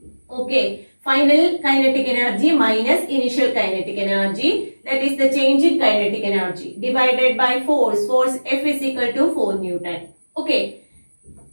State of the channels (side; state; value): both; inverted; correlation -1.00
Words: Okay, final kinetic energy minus initial kinetic energy, that is the change in kinetic energy, divided by force. Force F is equal to 4 Newton. Okay,